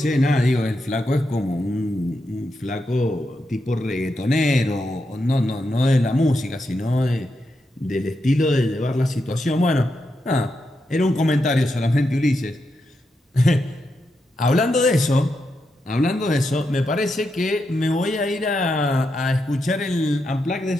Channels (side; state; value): both; normal; correlation 0.84